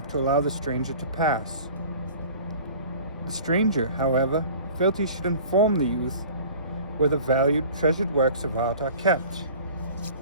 to allow the stranger to pass. The stranger, however, felt he should inform the youth where the valued, treasured works of art are kept.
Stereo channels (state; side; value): inverted; both; correlation -0.44